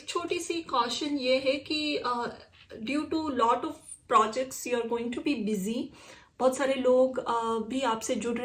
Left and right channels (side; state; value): both; identical; correlation 1.00